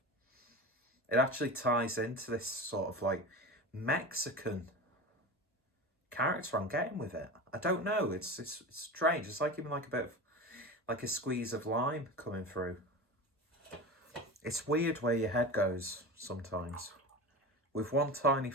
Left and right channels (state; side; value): normal; both; correlation 0.29